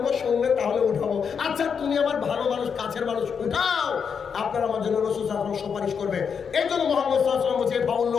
শুনবেন, তাহলে উঠাবো। আচ্ছা তুমি আমার ভালো মানুষ, কাছের মানুষ, উঠাও, আপনার আমার জন্য রাসূল সাল্লাল্লাহু আলাইহি ওয়াসাল্লাম সুপারিশ করবে। এই জন্য মুহাম্মদ সাল্লাল্লাহু আলাইহি ওয়াসাল্লাম বলছে,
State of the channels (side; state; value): right; quieter; 6.6 dB